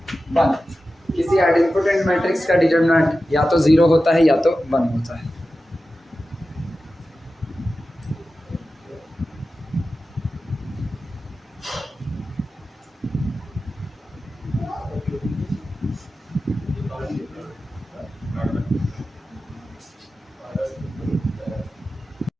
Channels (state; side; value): normal; both; correlation 0.93